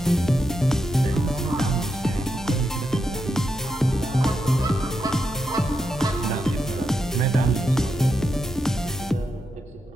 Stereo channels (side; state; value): both; normal; correlation 0.85